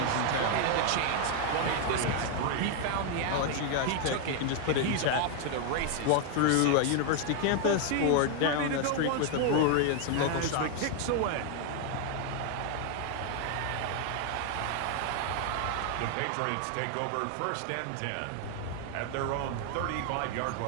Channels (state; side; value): different; both; correlation 0.00